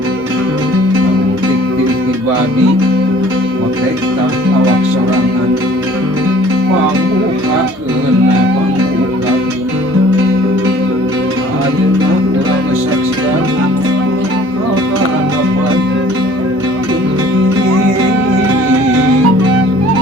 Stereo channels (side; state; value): both; normal; correlation 0.52